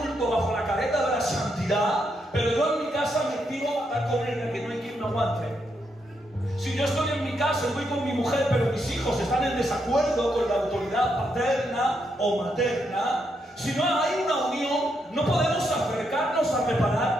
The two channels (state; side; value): normal; both; correlation 0.79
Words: bajo la careta de la santidad, pero yo en mi casa me tiro a matar con ella, que no hay quien me aguante. Si yo estoy en mi casa, estoy con mi mujer, pero mis hijos están en desacuerdo con la autoridad paterna o materna, si no hay una unión, no podemos acercarnos a